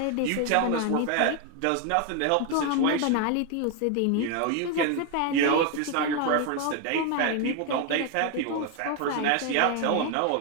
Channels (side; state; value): both; different; correlation 0.01